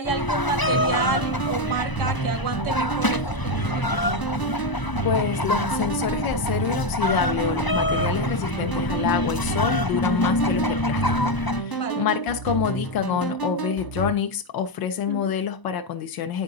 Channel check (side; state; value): right; late; 1.0 ms